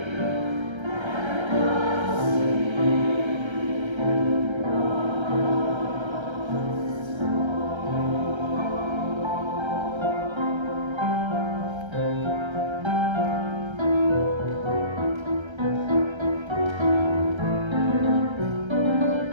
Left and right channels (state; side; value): late; left; 1.3 ms